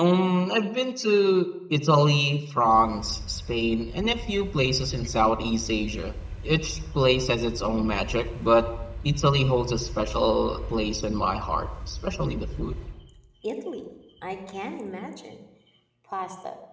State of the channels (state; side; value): identical; both; correlation 1.00